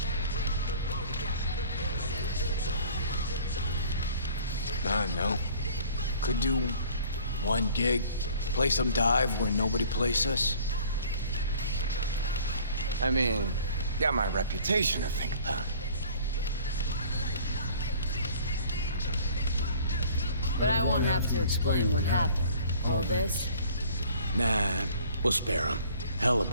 I don't know. Could do one gig, play some dive where nobody plays us. I mean, got my reputation to think about. But I won't have to explain what happened. All this? Nah, we'll spare him. Hella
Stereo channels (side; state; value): both; inverted; correlation -0.51